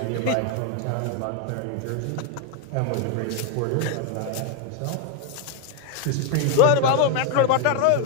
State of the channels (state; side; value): different; both; correlation 0.00